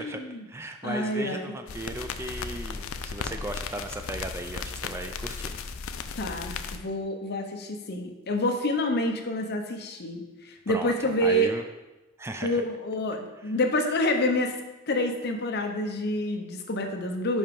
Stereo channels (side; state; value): both; normal; correlation 0.18